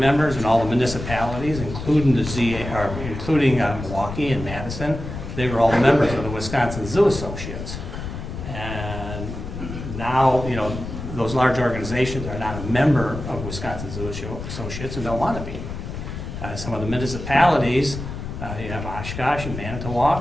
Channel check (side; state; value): left; noise; rumble, 8 dB below the sound